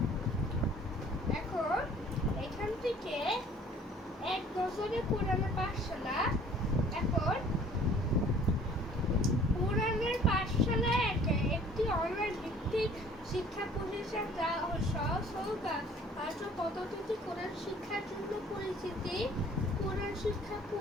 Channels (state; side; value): normal; both; correlation 0.53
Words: এখান থেকে এক বছরে কোরআনের পাঠশালা। এখন কোরআনের পাঠশালা একটি অনলাইন ভিত্তিক শিক্ষা প্রতিষ্ঠান যা সহজ কার্য পদ্ধতিতে কোরআন শিক্ষার জন্য পরিচিতি। কোরআন শিক্ষা